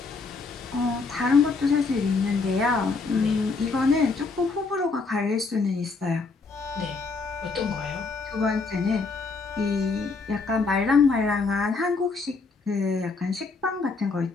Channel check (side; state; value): right; quieter; 4.2 dB